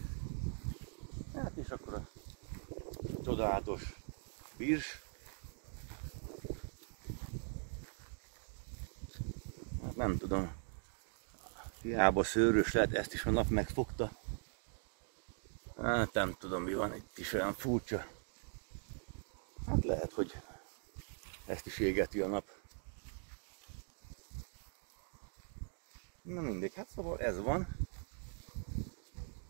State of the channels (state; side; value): silent; left; 50 dB below the other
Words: Hát és akkor a csodálatos virs. Hát nem tudom, hiába szőrös lehet, ezt is a nap megfogta. Hát nem tudom mi van, itt is olyan furcsa. Hát lehet, hogy ezt is égeti a nap. Na mindegy, hát szóval ez van.